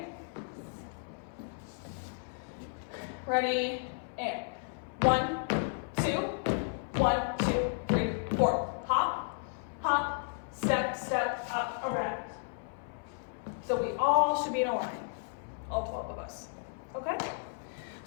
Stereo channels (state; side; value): silent; right; 55 dB below the other